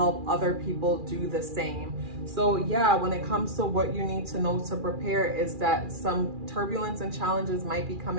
other people do the same. So yeah, when it comes to what you need to know to prepare, is that some turbulence and challenges might be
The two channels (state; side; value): late; left; 2.4 ms